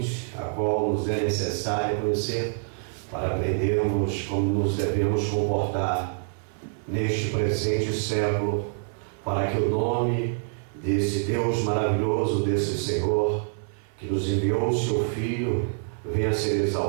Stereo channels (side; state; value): left; silent; 61 dB below the other